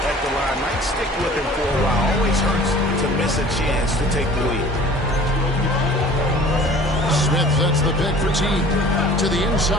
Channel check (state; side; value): normal; both; correlation 0.47